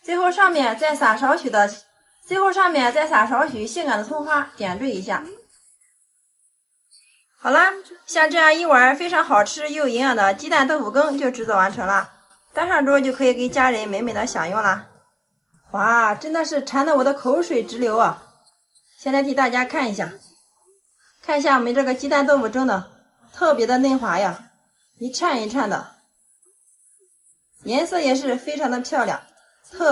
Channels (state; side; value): identical; both; correlation 1.00